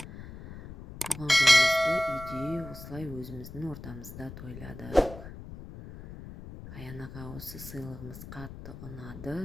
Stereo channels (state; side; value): noise; left; rumble, 13 dB below the sound